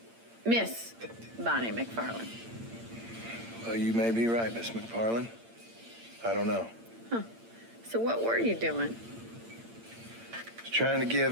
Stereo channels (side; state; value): left; late; 8.8 ms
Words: Miss Bonnie McFarland. Well, you may be right, Miss McFarland. I don't know. So what were you doing? Just trying to